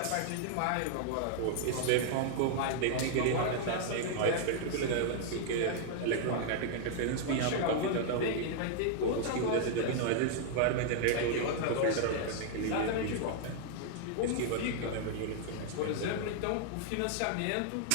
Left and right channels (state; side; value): different; both; correlation 0.00